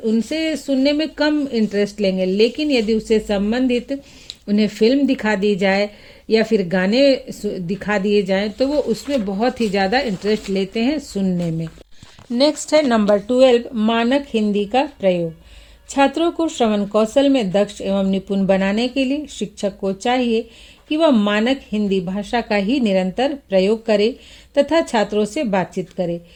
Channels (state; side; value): identical; both; correlation 1.00